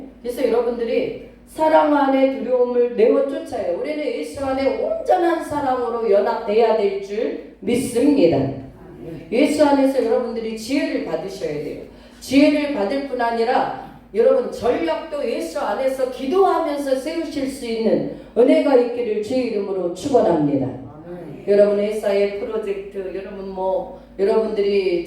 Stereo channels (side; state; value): both; identical; correlation 1.00